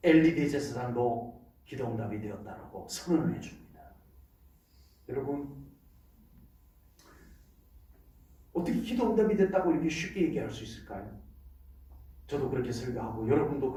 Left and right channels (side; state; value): both; identical; correlation 1.00